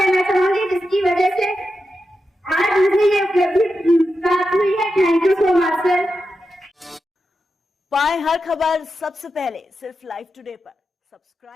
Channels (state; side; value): normal; both; correlation 0.89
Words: चाहूंगी, जिसकी वजह से आज मुझे ये उपलब्धि प्राप्त हुई है। Thank you so much sir. पाएं हर खबर सबसे पहले सिर्फ लाइव टुडे पर।